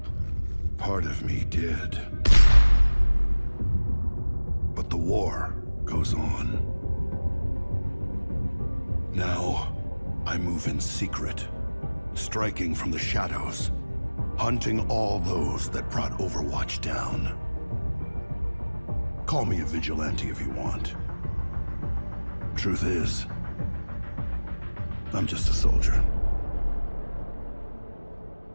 Part of me did. But the war goes on. Now, I move in secret, striking from the shadows, hunting all those that brought Overwatch down. Call me a vigilante if you want. Truth is, I'm just a soldier.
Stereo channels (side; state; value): both; inverted; correlation -1.00